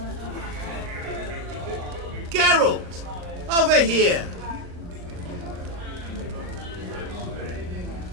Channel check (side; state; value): left; late; 38 ms